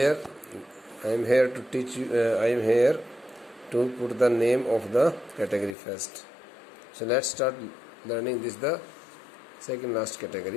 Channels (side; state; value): right; drops out; at 5.8 s